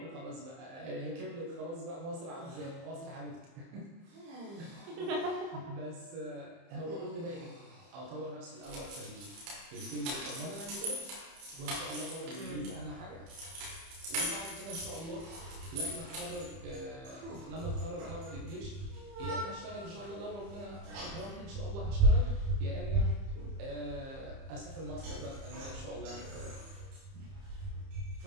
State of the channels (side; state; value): left; late; 30 ms